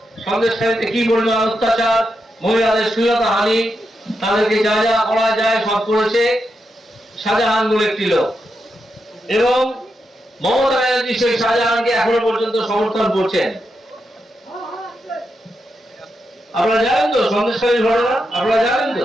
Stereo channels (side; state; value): both; normal; correlation 0.85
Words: সন্দেশখালীতে কি পরিমাণ অত্যাচার, মহিলাদের শ্লীলতা হানি, তাদেরকে যা যা করা যায় সব করেছে শাহজাহান বলে একটি লোক। এবং মমতা ব্যানার্জি সেই শাহজাহানকে এখনো পর্যন্ত সমর্থন করছেন। আপনারা জানেন তো সন্দেশখালীর ঘটনা, আপনারা জানেন তো।